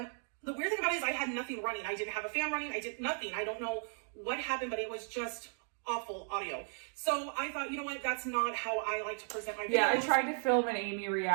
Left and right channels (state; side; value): silent; left; 54 dB below the other